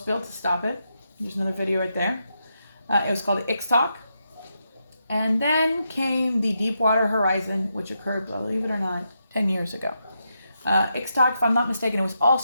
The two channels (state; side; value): inverted; both; correlation -0.83